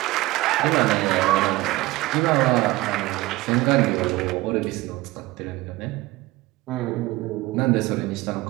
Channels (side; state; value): left; quieter; 19.4 dB